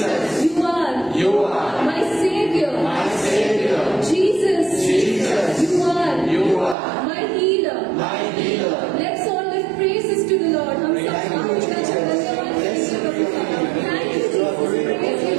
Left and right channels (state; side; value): drops out; left; at 6.8 s